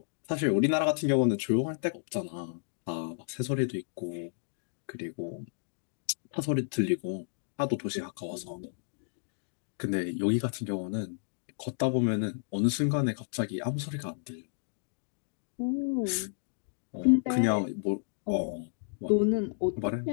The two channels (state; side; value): silent; right; digital silence